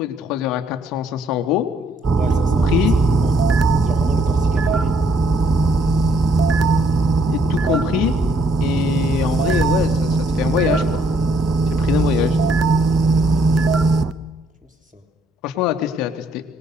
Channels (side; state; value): both; normal; correlation 0.67